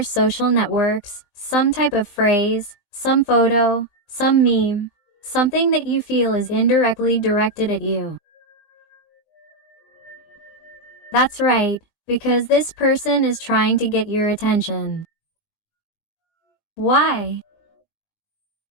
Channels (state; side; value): late; right; 19 ms